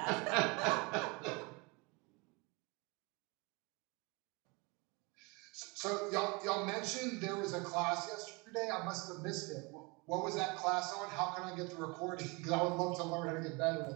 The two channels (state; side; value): quieter; left; 28.0 dB